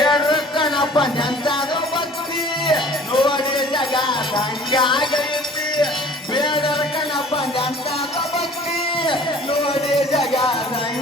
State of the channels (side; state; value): both; normal; correlation 0.49